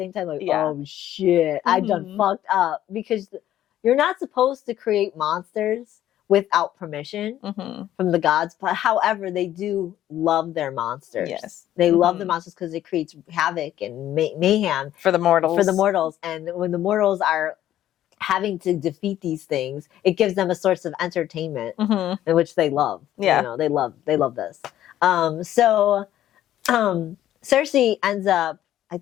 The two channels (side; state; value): right; quieter; 12.4 dB